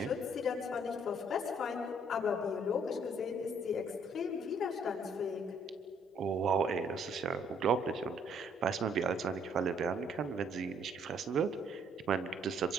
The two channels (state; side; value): normal; both; correlation 0.65